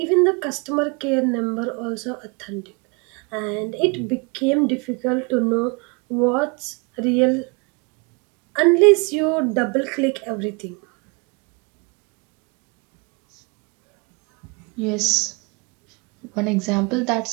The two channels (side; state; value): left; quieter; 30.4 dB